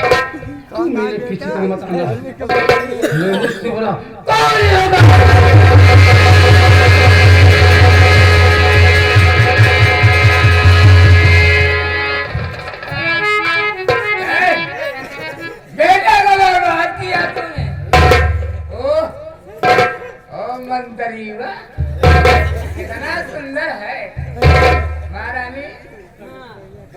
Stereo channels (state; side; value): identical; both; correlation 1.00